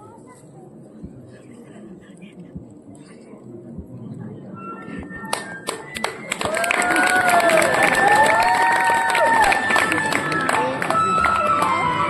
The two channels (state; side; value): identical; both; correlation 1.00